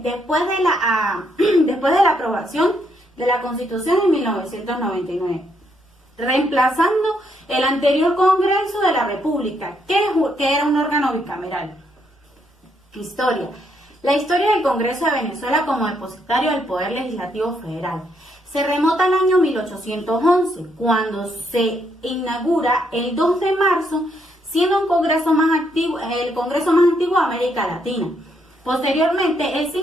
después de la aprobación de la Constitución en 1999, reemplazando el anterior Congreso de la República, que era un órgano bicameral. Historia. La historia del Congreso de Venezuela como depositario del Poder Legislativo Federal se remota al año 1811, cuando se inaugura el 2 de marzo, siendo el Congreso más antiguo de América Latina. Posteriormente, el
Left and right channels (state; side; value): normal; both; correlation 0.74